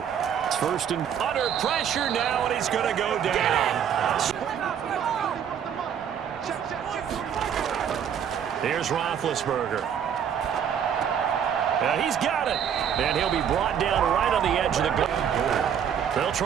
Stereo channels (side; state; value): left; quieter; 8.5 dB